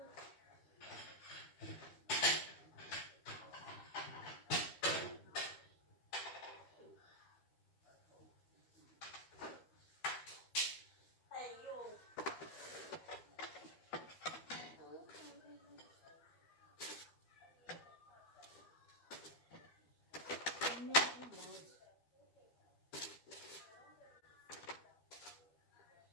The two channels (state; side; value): late; right; 12 ms